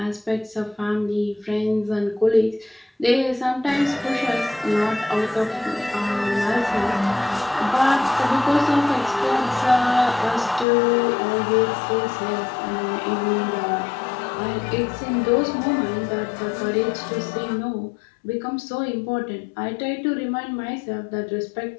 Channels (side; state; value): right; drops out; at 10.7 s